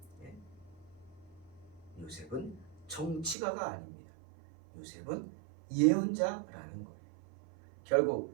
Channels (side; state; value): left; drops out; at 3.4 s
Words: 예? 요셉은 정치가가 아닙니다. 요셉은 예언자라는 거예요.